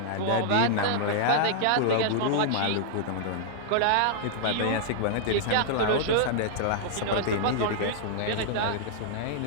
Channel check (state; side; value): different; both; correlation -0.01